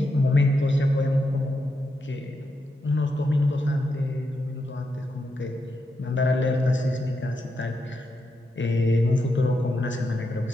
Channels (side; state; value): both; normal; correlation 0.84